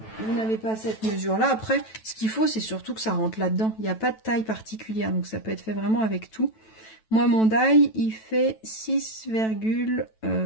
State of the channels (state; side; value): late; right; 9.1 ms